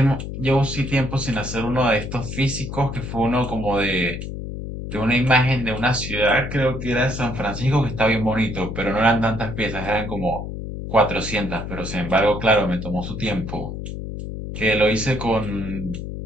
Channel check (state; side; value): noise; left; hum, 7 dB below the sound